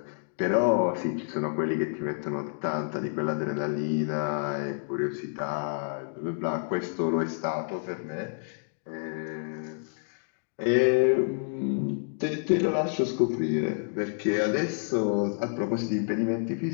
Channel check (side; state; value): right; silent; digital silence